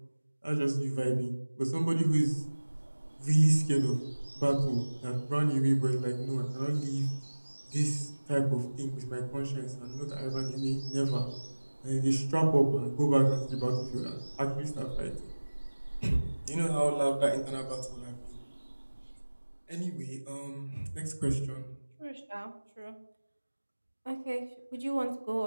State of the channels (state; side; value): inverted; both; correlation -1.00